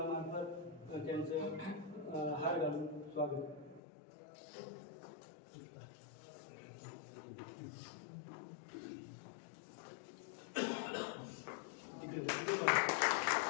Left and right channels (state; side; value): drops out; right; at 3.8 s